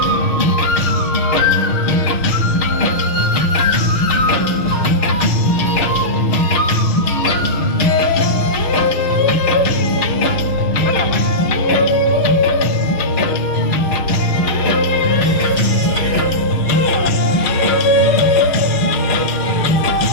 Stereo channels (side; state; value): right; late; 6.5 ms